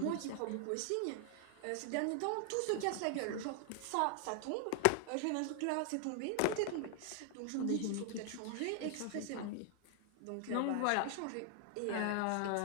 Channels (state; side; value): different; both; correlation 0.00